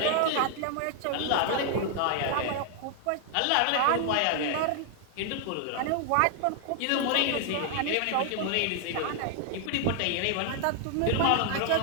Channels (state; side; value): different; both; correlation 0.00